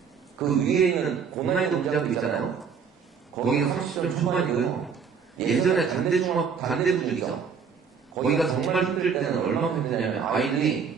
그 위에 있는 고난이도 문제학교 있잖아요. 거기가 30점 초반이고요. 예전에 단대분위기죠. 거기가 정말 힘들 때는 얼마나 힘드냐면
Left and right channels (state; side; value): quieter; left; 6.3 dB